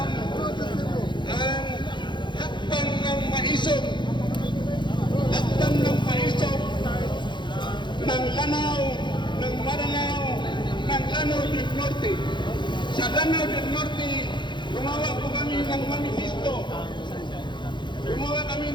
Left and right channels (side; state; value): right; late; 0.23 ms